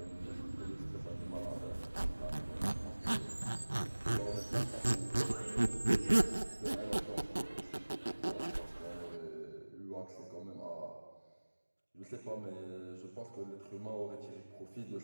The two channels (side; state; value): both; inverted; correlation -1.00